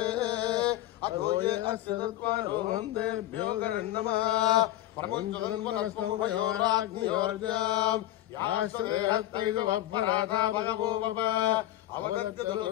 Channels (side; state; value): right; quieter; 14.6 dB